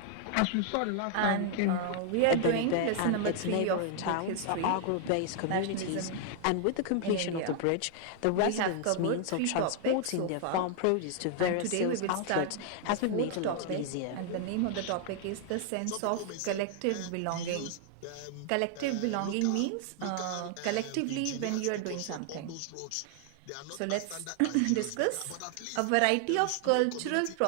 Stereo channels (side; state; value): both; different; correlation 0.00